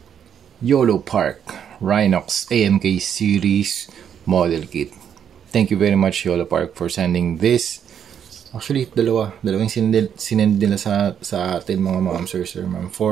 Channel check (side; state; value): left; quieter; 8.6 dB